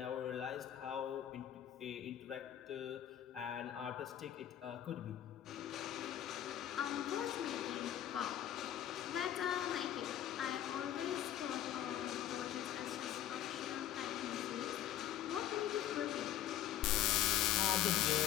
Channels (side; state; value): right; quieter; 11.6 dB